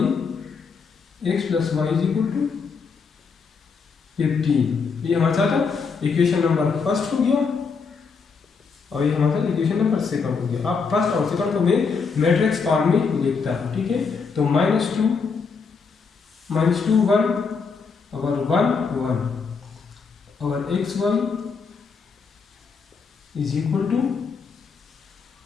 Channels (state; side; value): quieter; right; 5.3 dB